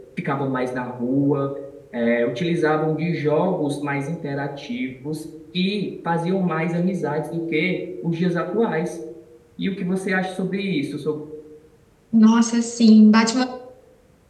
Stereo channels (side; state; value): both; identical; correlation 1.00